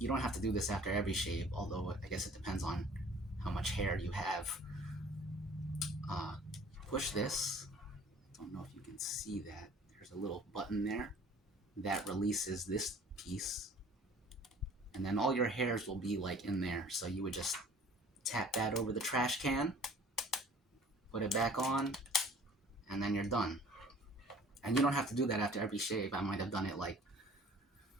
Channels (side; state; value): both; normal; correlation 0.50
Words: don't have to do this after every shave, although I guess it depends on how much hair you have. Push this. I don't know if you can see that. There's a little button there that releases this piece. and then all your hairs will be like in there. So you would just tap that over the trash can, put it back on, and then you're done. And you don't have to do that after every shave. I might have done it like